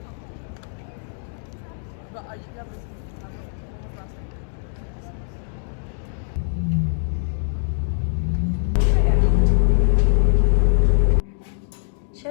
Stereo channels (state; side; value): silent; right; digital silence